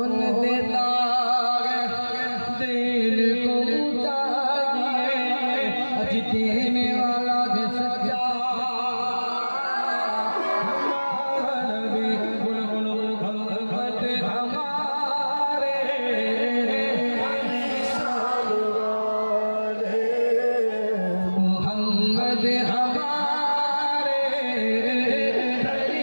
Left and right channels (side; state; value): both; inverted; correlation -1.00